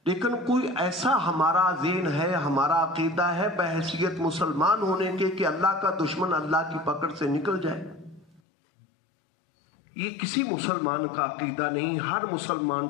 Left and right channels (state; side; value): drops out; right; at 8.4 s